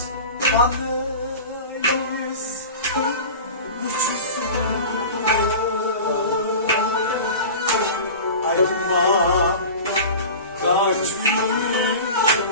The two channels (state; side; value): inverted; both; correlation -0.34